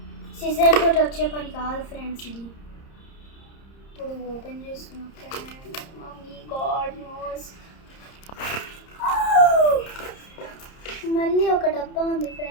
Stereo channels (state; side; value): late; right; 30 ms